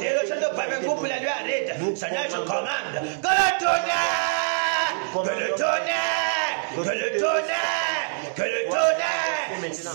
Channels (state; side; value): silent; left; digital silence